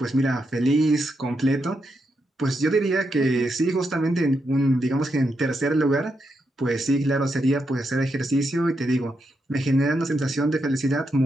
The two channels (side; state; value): both; normal; correlation 0.83